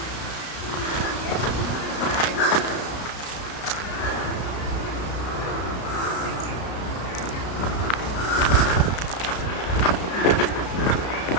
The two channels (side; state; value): right; late; 33 ms